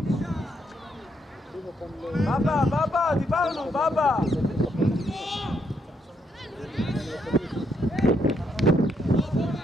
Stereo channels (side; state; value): both; normal; correlation 0.76